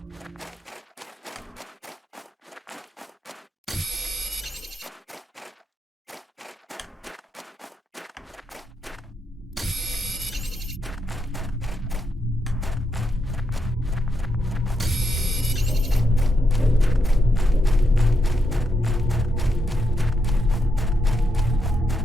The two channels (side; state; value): both; normal; correlation 0.82